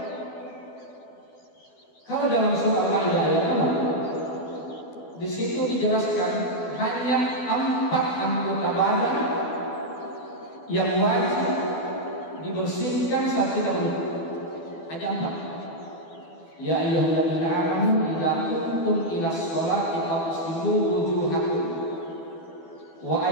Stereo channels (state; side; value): late; right; 12 ms